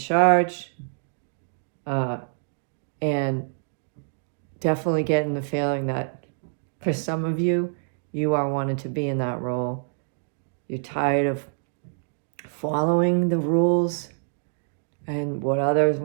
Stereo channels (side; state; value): left; silent; digital silence